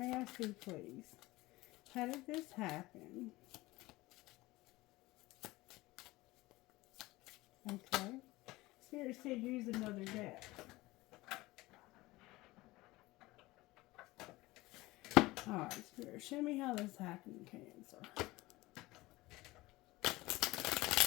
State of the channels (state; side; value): quieter; right; 19.8 dB